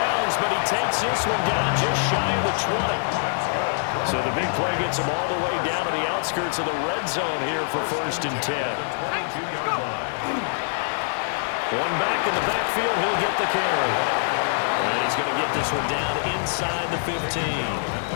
but he takes this one down just shy of the 20. So the big play gets him all the way down to the outskirts of the red zone here for 1st and 10. One back in the backfield, he'll get the carry. And he's going to get this one down inside the 15.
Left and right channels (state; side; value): silent; right; digital silence